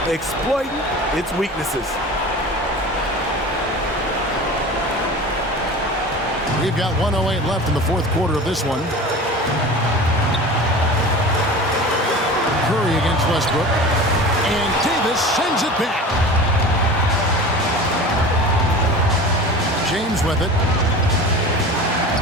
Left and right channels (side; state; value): both; normal; correlation 0.36